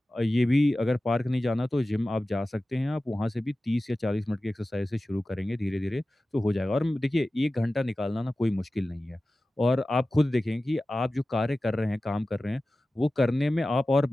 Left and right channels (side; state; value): both; normal; correlation 0.95